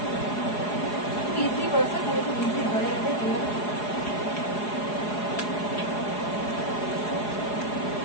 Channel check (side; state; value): right; late; 4.8 ms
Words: process, খুব easy হয়ে যাবে।